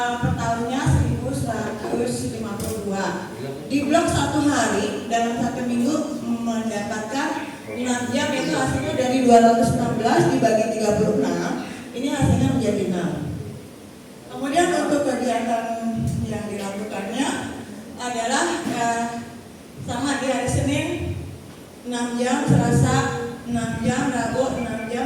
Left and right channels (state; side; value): identical; both; correlation 1.00